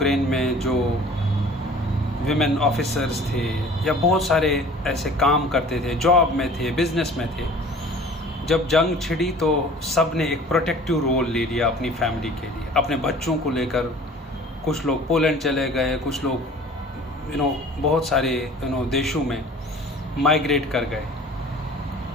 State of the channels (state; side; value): normal; both; correlation 0.47